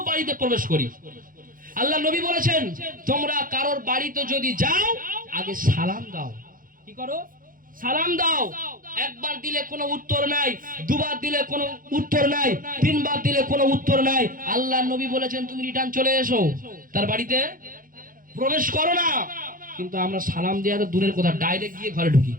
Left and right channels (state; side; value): late; left; 0.40 ms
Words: বাড়িতে প্রবেশ করি। আল্লাহ নবী বলেছেন, তোমরা কারোর বাড়িতে যদি যাও আগে সালাম দাও। কি করো? সালাম দাও। একবার দিলে কোনো উত্তর নাই, দুবার দিলে কোনো উত্তর নাই, তিনবার দিলে কোনো উত্তর নাই। আল্লাহ নবী বলেছেন তুমি রিটার্ন চলে এসো, তার বাড়িতে প্রবেশ করো না। কিন্তু আমরা সালাম দেওয়া তো দূরের কথা, ডাইরেক্ট গিয়ে ঘরে ঢুকি।